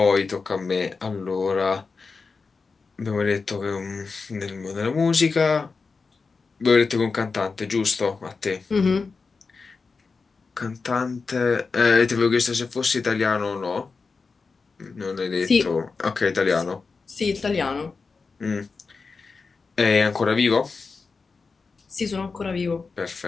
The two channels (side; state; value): right; quieter; 4.6 dB